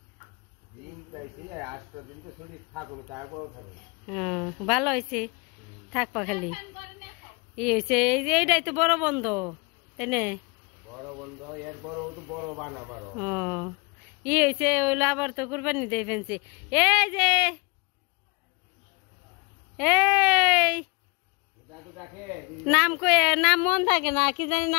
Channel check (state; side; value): quieter; right; 29.7 dB